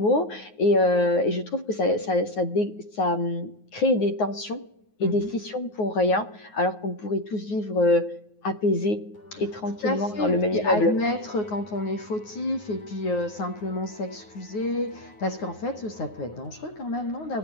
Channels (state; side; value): late; right; 9.5 ms